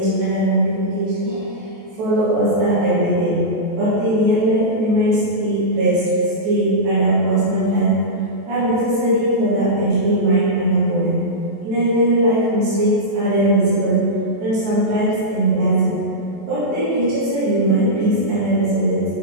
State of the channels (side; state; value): left; late; 14 ms